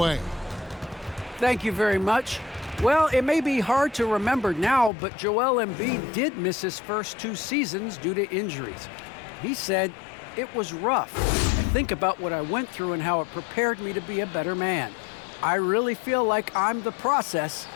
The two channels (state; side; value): drops out; right; at 4.9 s